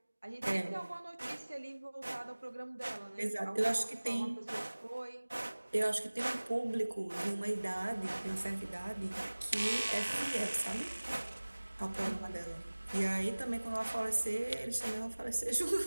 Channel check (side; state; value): both; inverted; correlation -1.00